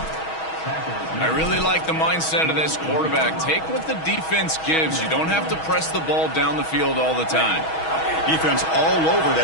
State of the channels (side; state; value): right; late; 6.2 ms